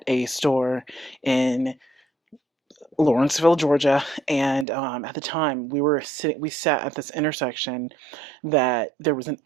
a store in Lawrenceville, Georgia, and at the time we sat at this intersection that there was an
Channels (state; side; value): drops out; left; at 4.7 s